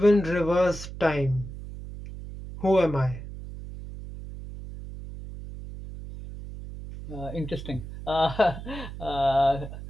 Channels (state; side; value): noise; right; hum, 11 dB below the sound